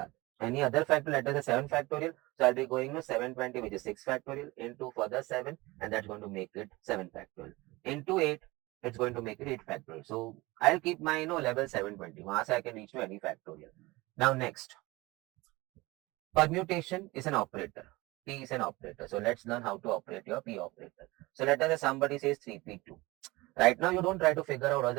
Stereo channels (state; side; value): quieter; left; 21.6 dB